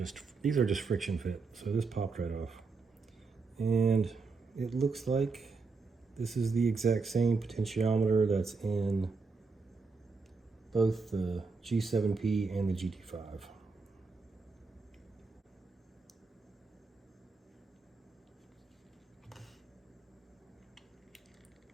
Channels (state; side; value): quieter; left; 4.3 dB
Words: friction fit. So this popped right off, and it looks like this is the exact same potentiometer that's in both the G7P and the GT5.